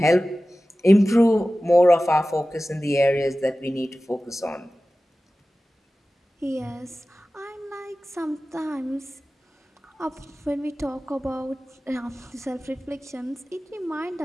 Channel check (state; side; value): normal; both; correlation 0.96